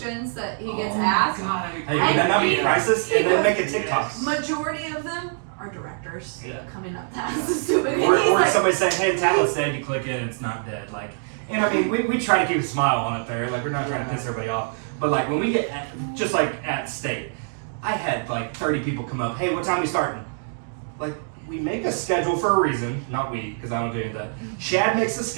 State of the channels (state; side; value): silent; left; digital silence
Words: that he gets Oh my asked. God, Hey, would that not be he- crisis? he And then goes- make a TikTok. Majority of them are directors Yeah. coming up to ask the stupid. Or, and he's or like, somebody saying, "Hey, tablet's dead." You click it, and it's not dead. Like, and I mean, we try to keep a smile on it there. Like, we're not trying to piss everybody off. But like when we get just like at state, I had like 30 people come up. "Hey, what time we starting?" Like, we make a schedule for a reason. Not we, because I don't do any of that. Chad makes a